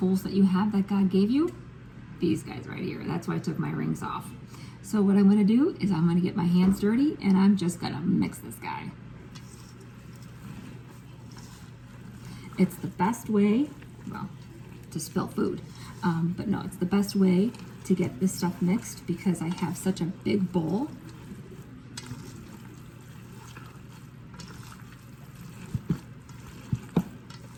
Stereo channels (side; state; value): both; identical; correlation 1.00